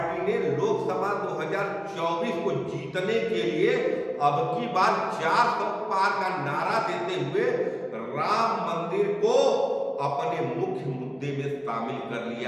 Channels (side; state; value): both; identical; correlation 1.00